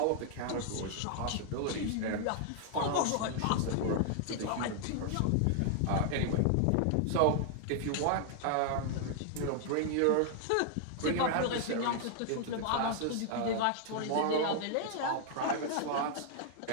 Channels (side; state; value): both; different; correlation 0.00